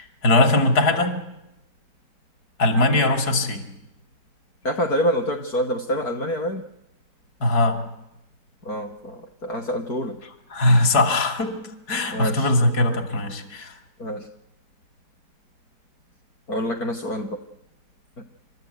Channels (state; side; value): late; right; 4.7 ms